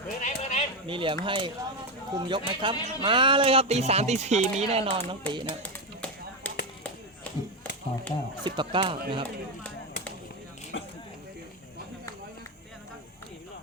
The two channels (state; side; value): normal; both; correlation 0.10